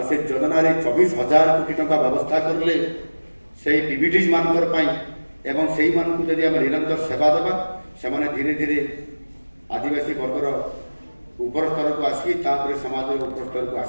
ସେ ଯୋଜନାରେ 24,000 କୋଟି ଟଙ୍କା ବ୍ୟବସ୍ଥା କରିଲେ ସେଇ PBDs ମାନଙ୍କର ପାଇଁ। ଏବଂ ସେଇମାନଙ୍କୁ ଯଦି ଆମେ ନିରନ୍ତର ସେବା ଦେବା, ସେମାନେ ଧୀରେ ଧୀରେ ଆଦିବାସୀ ବର୍ଗର ଉପର ସ୍ତରକୁ ଆସିକି ତାପରେ ସମାଜର ଉପର ସ୍ତରକୁ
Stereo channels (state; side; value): inverted; both; correlation -1.00